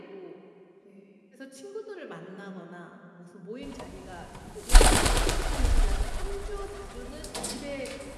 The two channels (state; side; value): identical; both; correlation 1.00